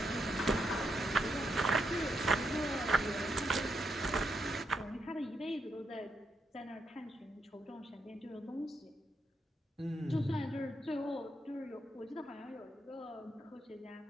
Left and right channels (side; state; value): both; normal; correlation 0.80